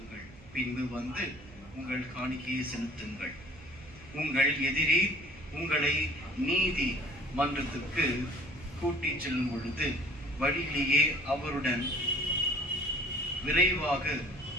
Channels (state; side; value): noise; right; hum, 22 dB below the sound